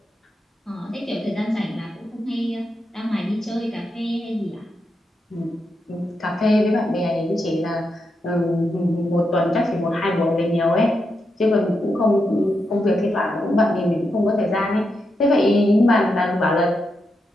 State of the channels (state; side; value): normal; both; correlation 0.85